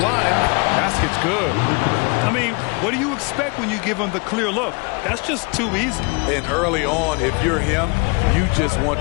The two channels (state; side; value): quieter; right; 31.5 dB